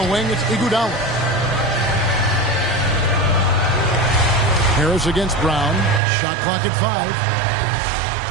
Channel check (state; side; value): drops out; left; at 6.0 s